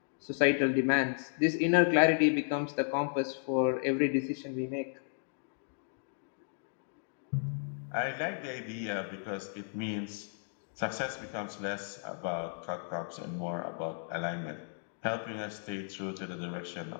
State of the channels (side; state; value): right; silent; digital silence